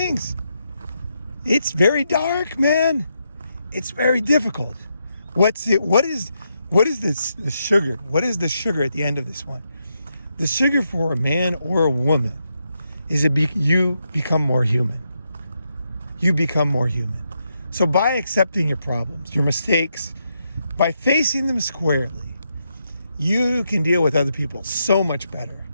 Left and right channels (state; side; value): inverted; both; correlation -0.82